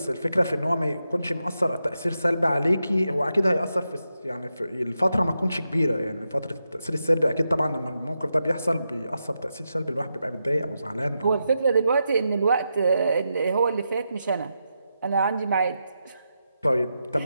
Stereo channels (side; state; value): both; inverted; correlation -0.86